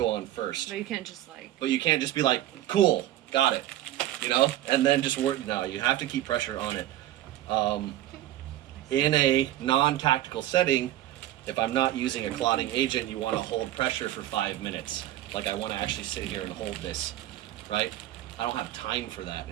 on first. But you can't just like. But you can't just be like, cool, got it, you know? And then just work. No, you have to keep pressure on it. In a non-tactical setting, if I'm not using a clotting agent, you want to hold pressure for 5 minutes. Like I want to actually sit here and hold this, right? I don't have time for that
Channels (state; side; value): quieter; left; 13.8 dB